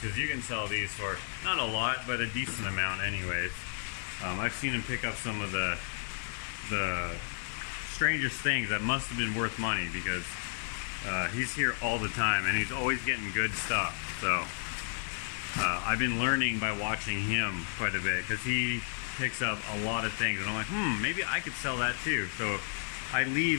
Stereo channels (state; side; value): silent; right; 56 dB below the other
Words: you can sell these for not a lot, but a decent amount anyways. I've seen him pick up some of the strangest things that must have been worth money, because he's here all the time and he's always getting good stuff. So I've been learning by watching him quite a bit, because he picks up a lot of things and I'm like, maybe I could sell that too. So I